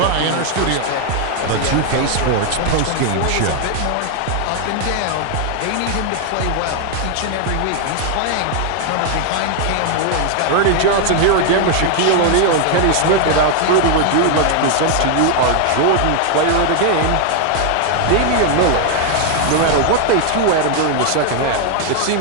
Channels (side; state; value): both; different; correlation 0.00